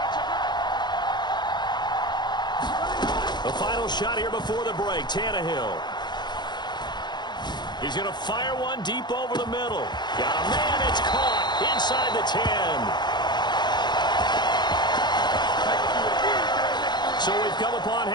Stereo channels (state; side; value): late; right; 0.21 ms